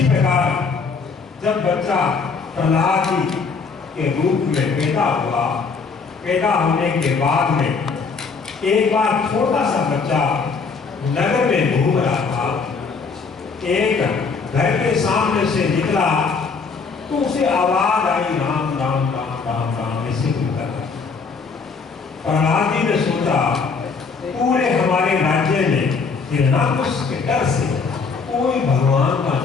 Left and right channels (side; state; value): right; quieter; 5.0 dB